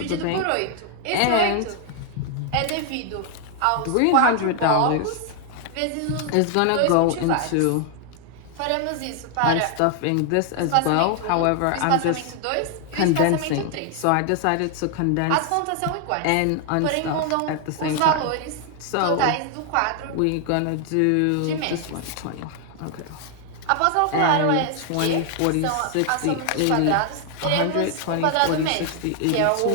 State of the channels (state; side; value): different; both; correlation 0.00